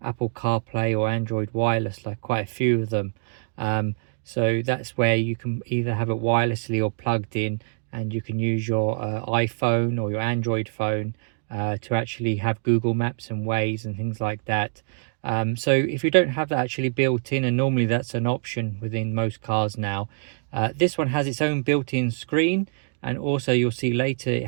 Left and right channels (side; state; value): left; silent; digital silence